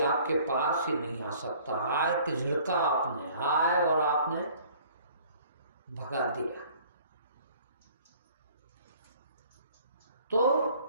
आपके पास ही नहीं आ सकता। आए कि झिड़का आपने, आए और आपने भगा दिया, तो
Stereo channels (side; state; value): both; inverted; correlation -0.53